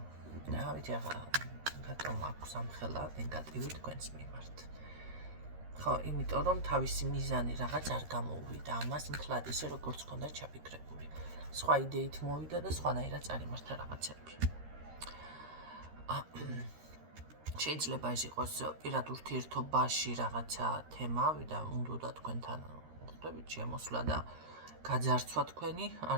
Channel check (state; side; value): late; left; 13 ms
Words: ნავით ახლა რატომ აქვს ამხელა ნეგატივი თქვენს მიმართ. ხო, იმიტომ რომ თავისი მიზანი რაღაც არ გამოუვიდა ამას მთლად ისე როგორც ჰქონდა ჩაფიქრებული. სხვა იდეით მოვიდა და სხვანაირად წარიმართა რაღაცები. შეიძლება ეს იყოს პირად ურთიერთობაში რაღაცა თემა და უნდა თქვენთან ხვდებით შემოსვლა და გაძარცვა თქვენი არ